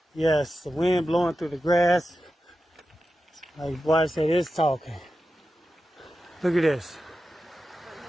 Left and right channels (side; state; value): both; normal; correlation 0.91